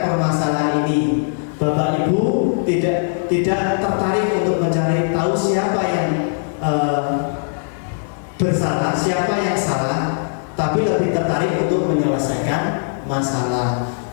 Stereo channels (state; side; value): silent; right; digital silence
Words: permasalahan ini. Bapak Ibu tidak tertarik untuk mencari tahu siapa yang bersalah, siapa yang salah, tapi lebih tertarik untuk menyelesaikan masalah.